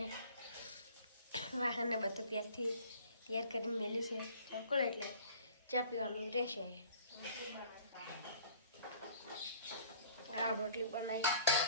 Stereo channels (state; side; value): inverted; both; correlation -0.50